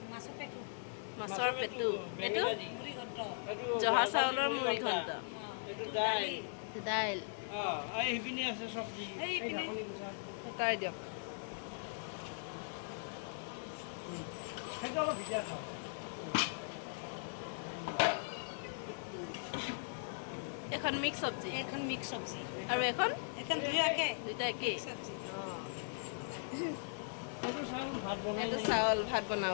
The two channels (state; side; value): silent; right; digital silence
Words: মাছৰ পেটু এইটো জহা চাউলৰ মুড়ি ঘণ্ট দাইল তাই দিয়ক এখন মিক্স চব্জি আৰু এখন দুইটা একেই এইটো চাউল ভাত